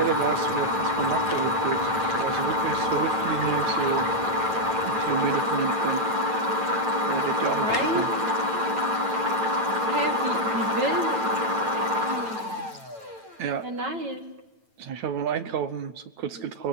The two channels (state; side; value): late; left; 9.0 ms